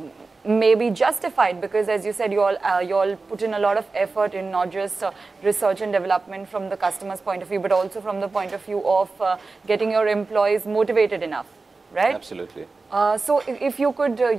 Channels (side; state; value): left; quieter; 3.9 dB